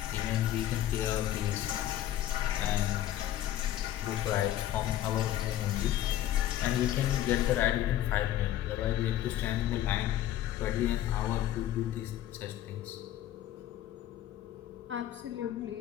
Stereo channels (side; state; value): right; quieter; 12.6 dB